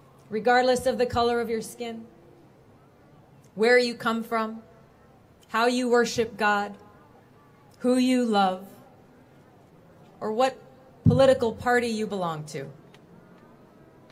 Regardless of the color of your skin, where you come from, how you worship God, who you love, or what political party you belong to.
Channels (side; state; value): both; identical; correlation 1.00